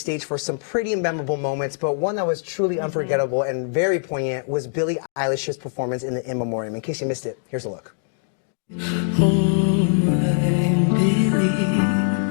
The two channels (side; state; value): right; silent; digital silence